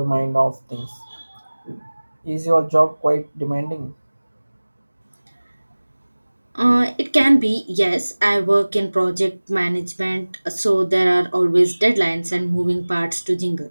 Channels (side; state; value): both; inverted; correlation -1.00